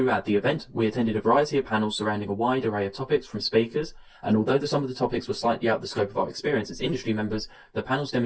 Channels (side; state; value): both; identical; correlation 1.00